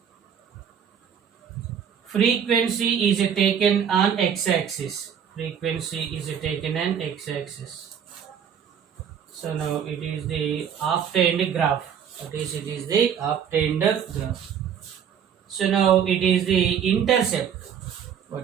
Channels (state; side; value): quieter; left; 8.2 dB